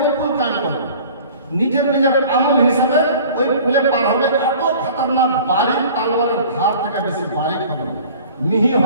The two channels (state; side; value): inverted; both; correlation -0.46